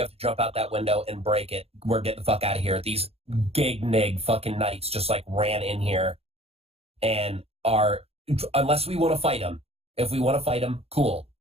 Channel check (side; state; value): left; late; 0.29 ms